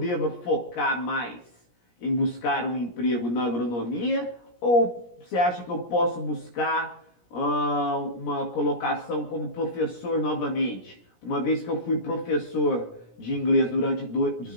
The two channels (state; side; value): late; right; 17 ms